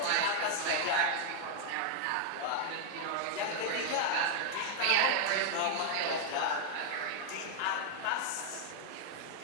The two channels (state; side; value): different; both; correlation 0.00